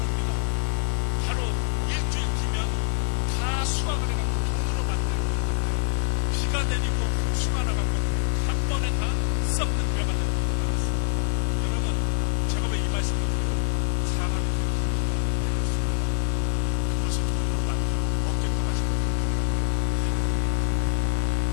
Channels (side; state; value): right; silent; digital silence